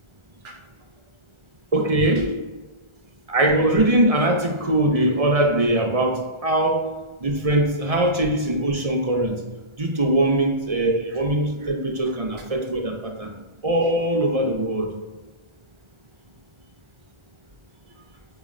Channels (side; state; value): left; late; 1.7 ms